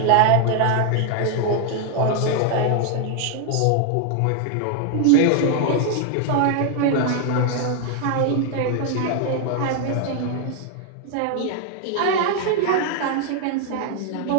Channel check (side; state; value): both; different; correlation 0.00